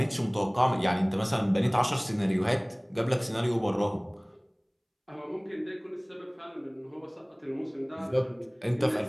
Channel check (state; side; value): identical; both; correlation 1.00